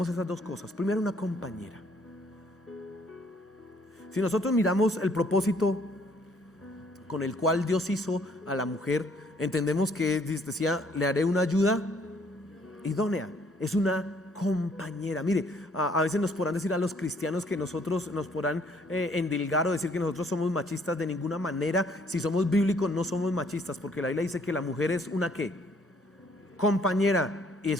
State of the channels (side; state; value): both; normal; correlation 0.64